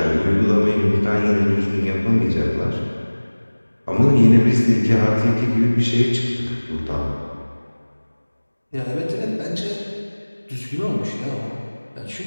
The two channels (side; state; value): both; inverted; correlation -1.00